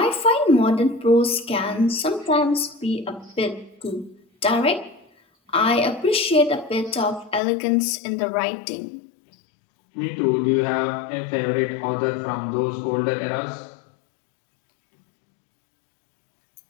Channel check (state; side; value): drops out; right; at 7.4 s